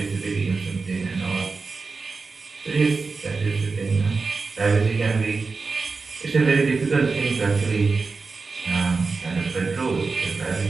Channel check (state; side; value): quieter; left; 4.4 dB